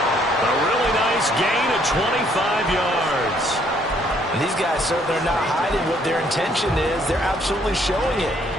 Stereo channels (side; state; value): both; normal; correlation 0.66